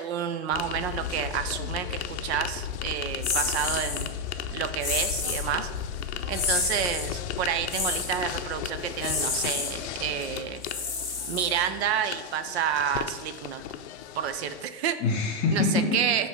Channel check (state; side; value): normal; both; correlation 0.04